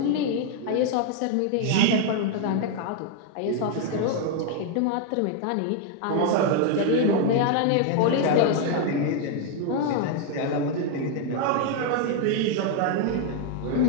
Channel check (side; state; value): both; different; correlation 0.00